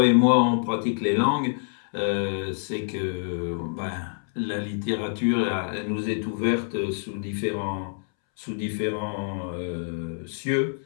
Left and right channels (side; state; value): right; silent; 61 dB below the other